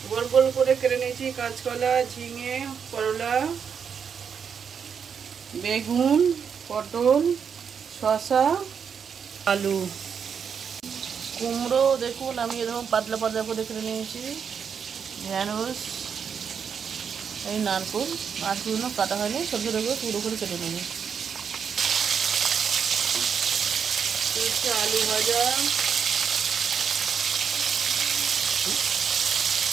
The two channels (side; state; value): left; quieter; 6.9 dB